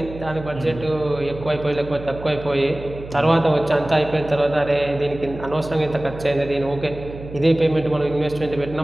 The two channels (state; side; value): noise; right; hum, 13 dB below the sound